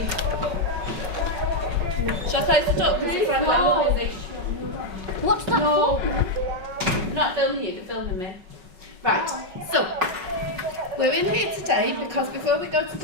Shall I close the door? What's that for? I'm not filming you, they're filming me. Right, so we're in here today because before we go to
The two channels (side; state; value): left; late; 5.5 ms